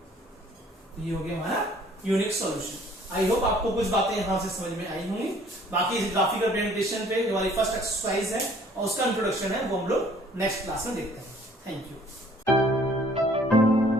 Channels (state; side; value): normal; both; correlation 0.56